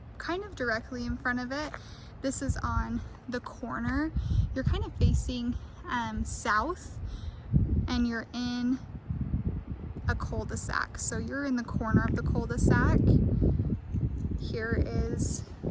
kind of directly in front of it. This is on the corner. You're kind of facing south, and you're in a cul-de-sac. So you're in the corner of the cul-de-sac. Here is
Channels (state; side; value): identical; both; correlation 1.00